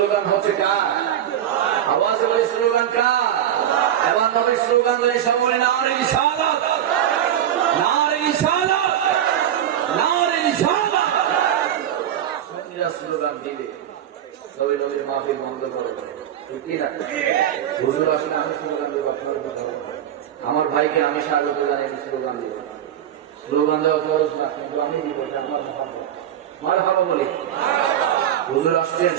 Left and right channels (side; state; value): left; quieter; 10.5 dB